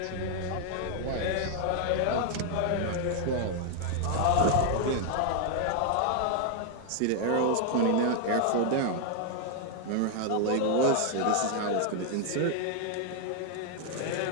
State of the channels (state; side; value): different; both; correlation 0.00